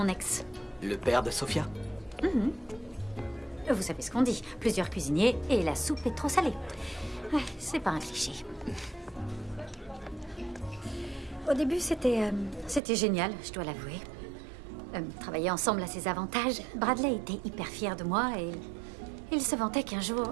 ex. Le père de Sophia? Mhm. Vous savez ce qu'on dit, plusieurs cuisiniers et la soupe est trop salée. Ouais, c'est pas un cliché. Au début, c'était génial, je dois l'avouer. Travailler ensemble a ses avantages. Bradley était hyper fier de moi et il se vantait qu'un jour,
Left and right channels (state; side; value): drops out; left; at 12.8 s